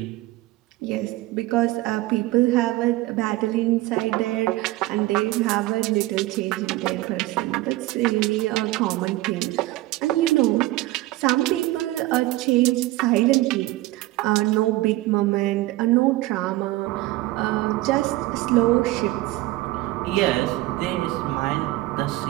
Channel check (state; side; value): quieter; left; 18.2 dB